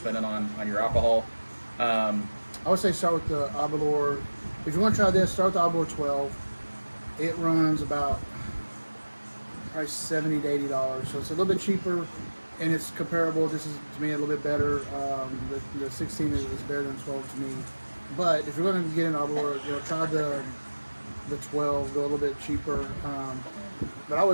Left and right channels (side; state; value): both; inverted; correlation -1.00